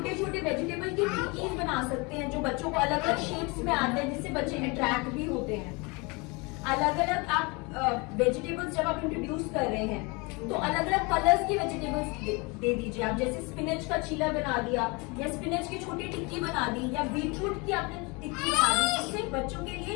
छोटे वेजिटेबल की टिक्कीज बना सकते हैं जो बच्चों को अलग अलग शेप्स में आते हैं, जिससे बच्चे अट्रैक्ट भी होते हैं। अलग अलग आप वेजिटेबल्स जब आप इंट्रोड्यूस कर रहे हैं, तो अलग अलग कलर्स की वेजिटेबल्स दे दीजिए। आप जैसे स्पिनच का चीला बना दिया, या स्पिनच की छोटी टिक्की बना दी, या बीटरूट की आपने टिक्की बना दी, जिससे बच्चों के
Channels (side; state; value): right; quieter; 28.1 dB